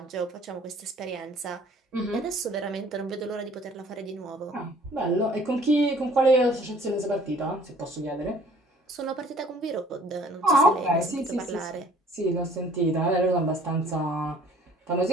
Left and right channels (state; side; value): normal; both; correlation 0.55